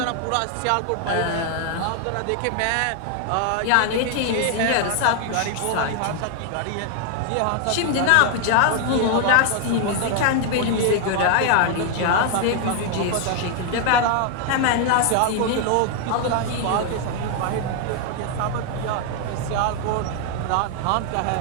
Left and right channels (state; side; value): different; both; correlation 0.00